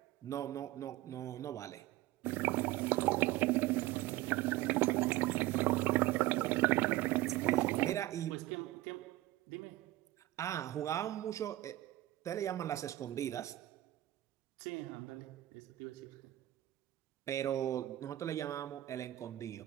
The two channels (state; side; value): quieter; left; 16.2 dB